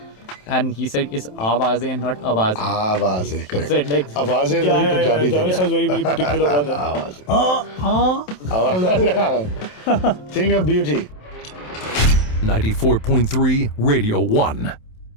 and he said it's Awaazein, not Awaazein. Awaazein, correct. So it like, Awaazein is very Punjabi thing. Javed Sir is very, very particular about that. Awaazein. Thing of beauty. 94.3 Radio 1.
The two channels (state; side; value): late; right; 27 ms